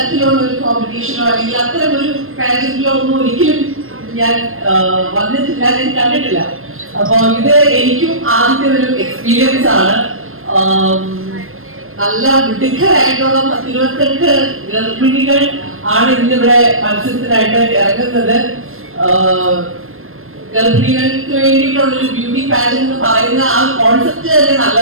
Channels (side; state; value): left; late; 0.61 ms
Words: ഒരു കോമ്പറ്റീഷനോ അല്ലെങ്കിൽ അത്തരം ഒരു പാരന്റിലോ ഒന്നും ഒരിക്കലും ഞാൻ വന്നിട്ടില്ല, ഞാൻ കണ്ടിട്ടില്ല. അപ്പൊ ഇത് എനിക്കും ആദ്യത്തെ ഒരു എക്സ്പീരിയൻസ് ആണ്. നല്ല മിടുക്കരായിട്ടുള്ള 28 ഗർഭിണികൾ ആണ് ഇന്നിവിടെ മത്സരത്തിനായിട്ട് ഇറങ്ങുന്നത്. ഗർഭിണികൾക്ക് വേണ്ടിയിട്ടുള്ളൊരു ബ്യൂട്ടി പാജന്റ് എന്ന് പറയുന്ന ആ കോൺസെപ്റ്റ് തന്നെ